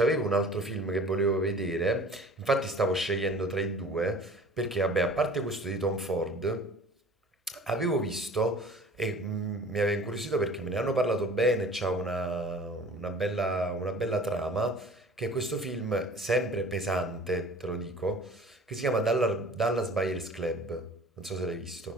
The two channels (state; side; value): normal; both; correlation 0.46